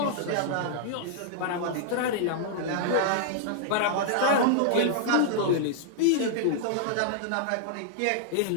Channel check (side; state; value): both; different; correlation -0.01